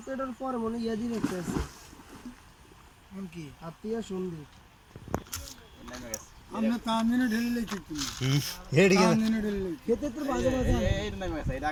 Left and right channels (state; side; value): identical; both; correlation 1.00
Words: তো এটার পরে মনে ইয়া দিন একটা আছে কোন কি আত্মীয় সন্দীপ আমরা তামিনে ঢেলে কিন্তু হেডি তামিনে ঢেলে খেতে তো বাজে বাজে এটা নামে গেছে এটা